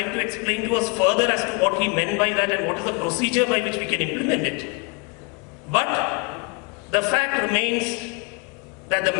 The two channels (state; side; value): quieter; right; 31.1 dB